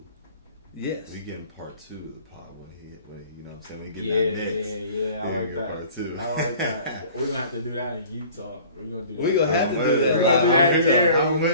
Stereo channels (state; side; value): inverted; both; correlation -0.48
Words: Yes. We getting part 2 of the pod when you know what I'm saying? We getting that next. Yeah. I like that. Part 2. I like that. We're gonna have to do that in Utah. We're gonna do that. We gonna have to do that. We're gonna do that